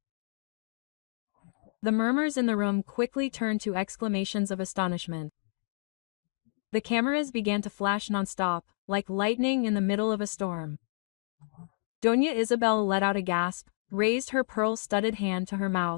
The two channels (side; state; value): right; silent; digital silence